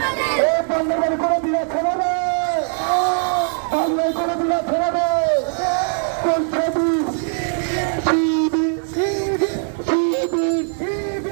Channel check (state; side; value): silent; left; digital silence